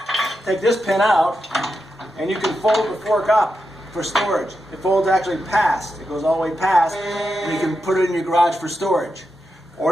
take this pin out, and you can fold the fork up for storage. It folds actually past. It goes all the way past, and you can put it in your garage for storage.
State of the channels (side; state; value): both; normal; correlation 0.87